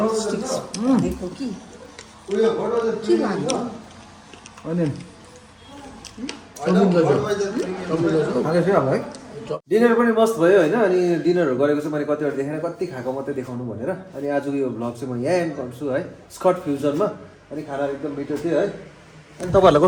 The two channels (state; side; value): identical; both; correlation 1.00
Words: दिएको कि के लानु अनि है डिनर पनि मस्त भयो होइन अनि डिनरहरू गरेको चाहिँ मैले कतिवटा देखेन कति खाएको मात्रै देखाउनु भनेर अनि आजको यो भ्लग चाहिँ म यहाँ एन्ड गर्छु है स्कट फ्युजनमा अनि खानाहरू एकदम मिठो थियो है अनि तपाईँहरूलाई